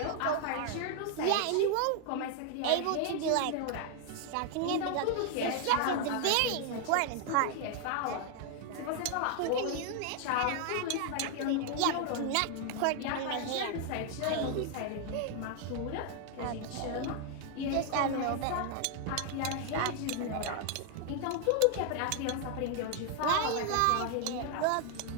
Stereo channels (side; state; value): both; different; correlation 0.00